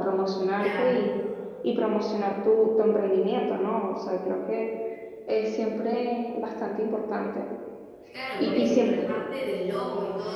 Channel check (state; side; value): identical; both; correlation 1.00